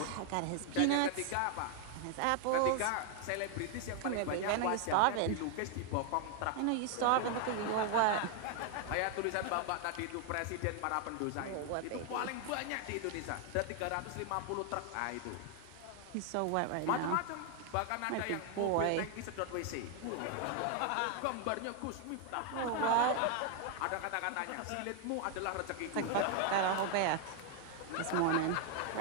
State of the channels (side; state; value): both; different; correlation 0.00